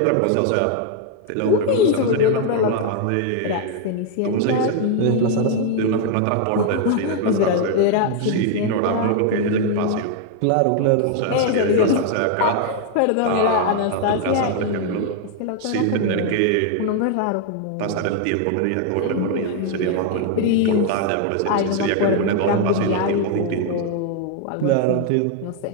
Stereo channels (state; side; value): different; both; correlation 0.00